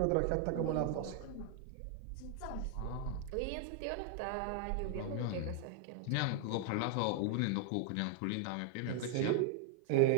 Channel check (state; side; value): different; both; correlation 0.00